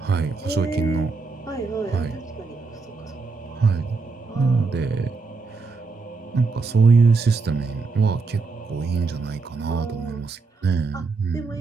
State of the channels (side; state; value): left; quieter; 4.3 dB